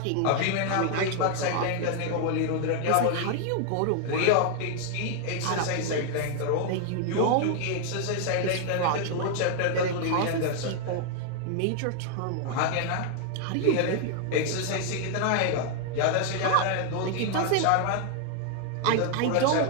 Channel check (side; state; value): both; different; correlation 0.00